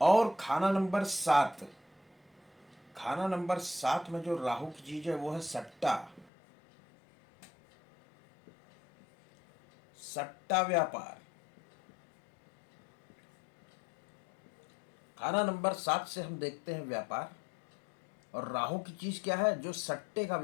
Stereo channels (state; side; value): drops out; right; at 6.3 s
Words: और खाना नंबर 7। खाना नंबर 7 में जो राहु की चीज है वो है सट्टा। सट्टा व्यापार। खाना नंबर 7 से हम देखते हैं व्यापार। और राहु की चीज क्या है? जो सट्टे का